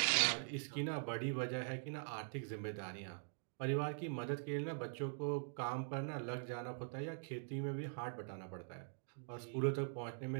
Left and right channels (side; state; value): left; silent; digital silence